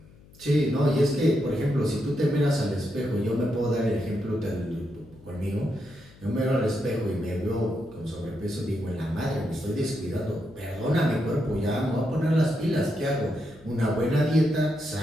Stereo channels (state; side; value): noise; left; hum, 24 dB below the sound